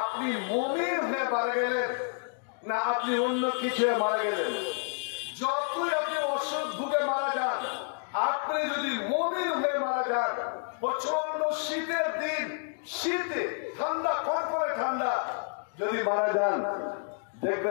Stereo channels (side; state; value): right; silent; 58 dB below the other